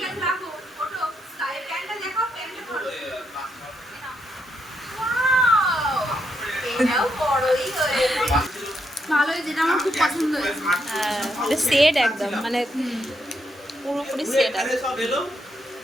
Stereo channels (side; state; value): both; normal; correlation 0.79